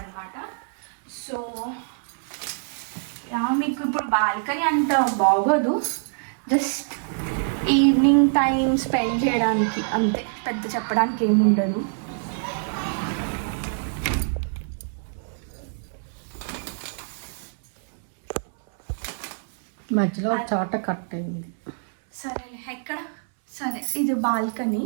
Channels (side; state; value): left; silent; 62 dB below the other